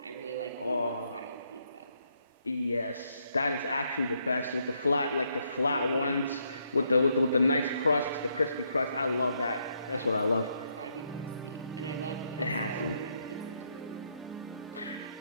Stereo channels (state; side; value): inverted; both; correlation -0.75